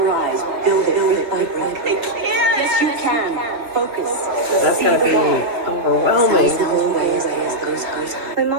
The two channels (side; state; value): left; late; 2.8 ms